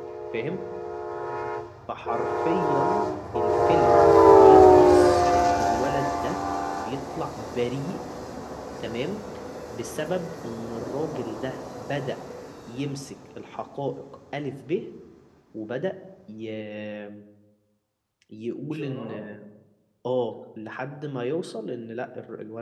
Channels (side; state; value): both; identical; correlation 1.00